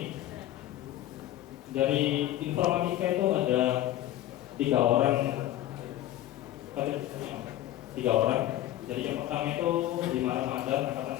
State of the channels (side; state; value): right; quieter; 13.7 dB